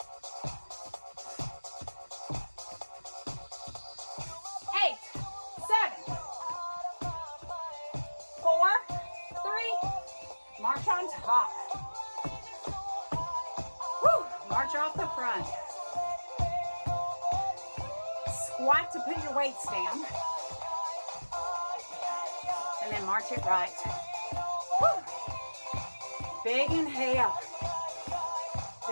March on top. Woo! March off the front. Squat to put your weights down. and then march it right. Woo. Big inhale.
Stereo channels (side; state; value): both; inverted; correlation -1.00